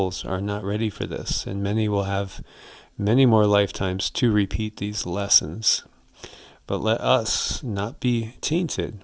are not ready for this, and many will have many more lifetimes to repeat these lessons. But let us not be tainted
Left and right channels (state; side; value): identical; both; correlation 1.00